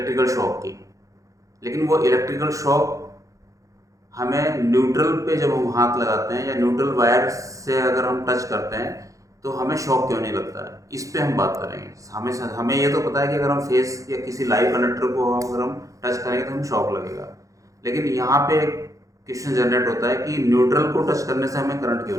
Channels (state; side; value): late; left; 0.16 ms